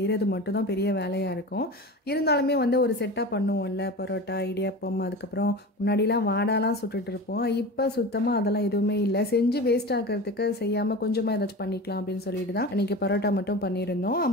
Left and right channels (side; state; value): both; normal; correlation 0.31